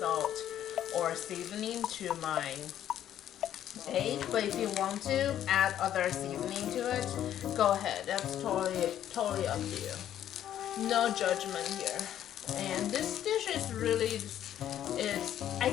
or seasoning to my egg. But if you want to add other seasoning to it, go ahead. That's totally up to you. No judgment here. And this dish is really, I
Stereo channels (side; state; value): right; quieter; 11.0 dB